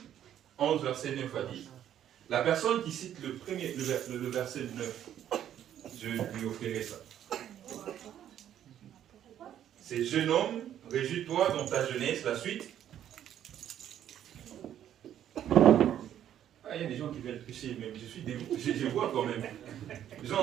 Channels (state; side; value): quieter; left; 10.6 dB